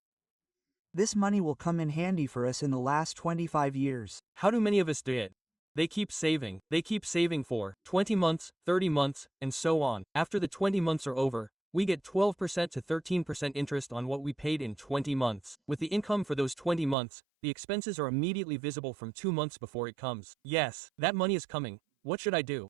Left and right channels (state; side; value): drops out; left; at 16.9 s